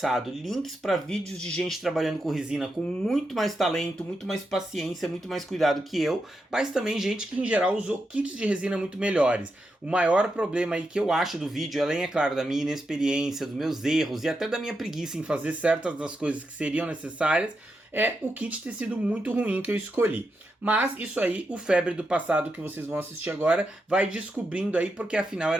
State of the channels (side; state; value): both; normal; correlation 0.85